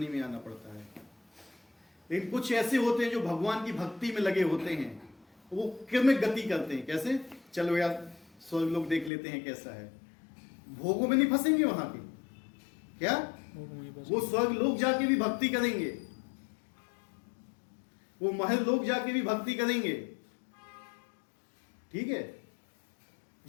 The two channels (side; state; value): right; drops out; at 9.1 s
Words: में आना पड़ता है। लेकिन कुछ ऐसे होते हैं जो भगवान की भक्ति में लगे होते हैं, वो क्रमिक गति करते हैं। कैसे? चलो यार स्वर्ग लोग देख लेते हैं कैसा है। भोगों में नहीं फंसेंगे वहां के। क्या? वो स्वर्ग लोग जाके भी भक्ति करेंगे, वो महल लोग जाके भी भक्ति करेंगे। ठीक है?